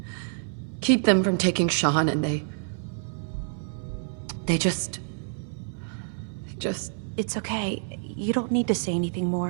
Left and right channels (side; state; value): left; silent; 60 dB below the other